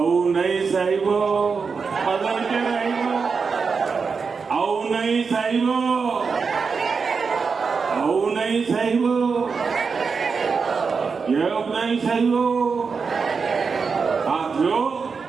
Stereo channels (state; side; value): quieter; left; 5.2 dB